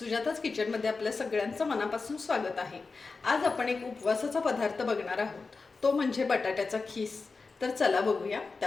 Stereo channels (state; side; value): quieter; right; 4.2 dB